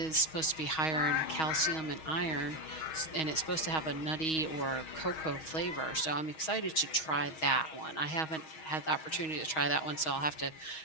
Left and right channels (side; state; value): right; late; 6.3 ms